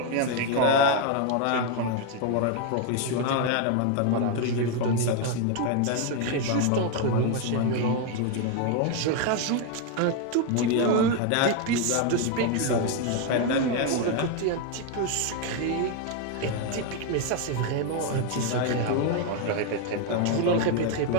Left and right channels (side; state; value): both; different; correlation 0.01